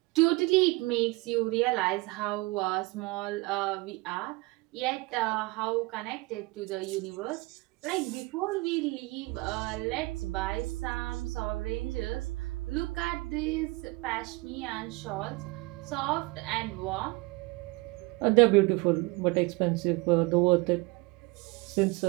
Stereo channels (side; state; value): left; quieter; 23.8 dB